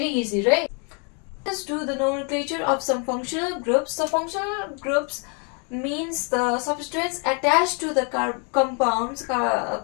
easy, right? Let's do the nomenclature of some functional groups. So functional groups means the substrates attached to the compounds,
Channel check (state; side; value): quieter; right; 36.8 dB